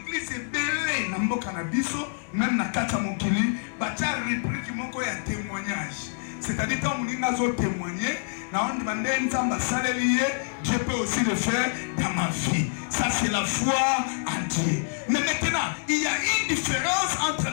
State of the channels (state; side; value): silent; right; digital silence